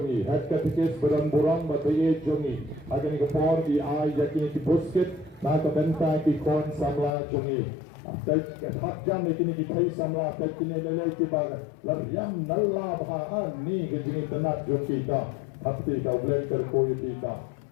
Head Katikis Badan Burang, Bataye Jomi. Agani Kapor, the Eye, Yakini Busket, Naka Mentang, Ikon, Samla Jomi. Baik hak jam kini kita samla baik kini lelai kita lariam nalla bahan ni kejini tenak jom kita hati kau bleng terkoi kita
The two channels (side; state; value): right; drops out; at 7.1 s